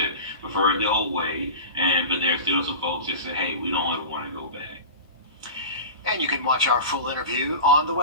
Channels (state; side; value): inverted; both; correlation -0.32